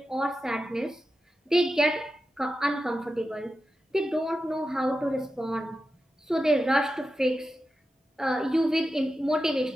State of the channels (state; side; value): normal; both; correlation 0.91